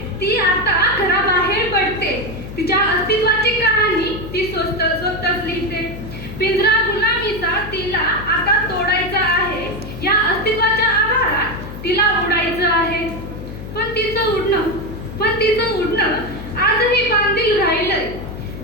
ती आता घराबाहेर पडते. तिच्या अस्तित्वाची कहाणी ती स्वतःच लिहिते. पिंजरा गुलामीचा तिला आता तोडायचा आहे. या अस्तित्वाच्या आभारात तिला उडायचं आहे. पण तिचं उडणं आजही बांधील राहिलंय.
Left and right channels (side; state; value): left; noise; hum, 11 dB below the sound